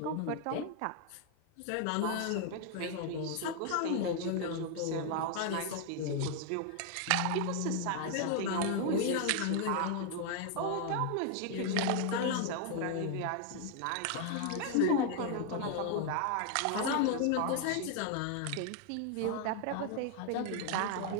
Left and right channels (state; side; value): different; both; correlation 0.00